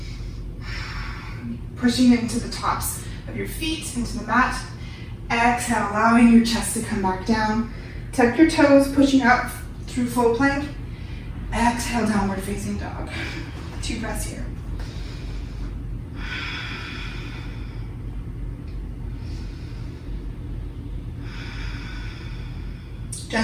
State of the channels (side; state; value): both; identical; correlation 1.00